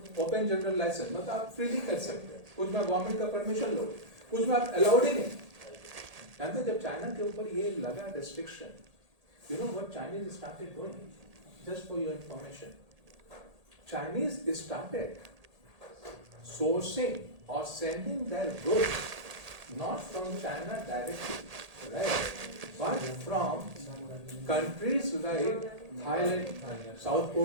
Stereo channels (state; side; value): late; left; 1.8 ms